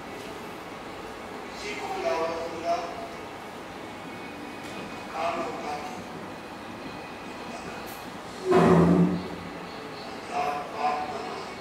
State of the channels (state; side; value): identical; both; correlation 1.00